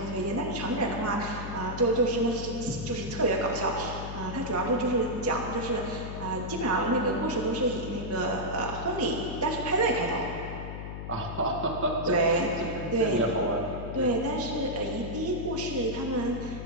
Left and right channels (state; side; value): noise; left; hum, 7 dB below the sound